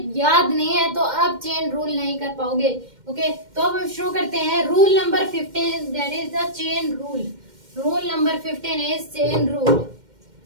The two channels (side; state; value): left; late; 2.1 ms